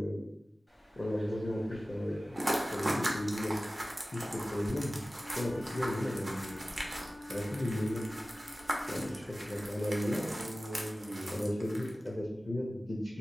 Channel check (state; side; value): normal; both; correlation 0.97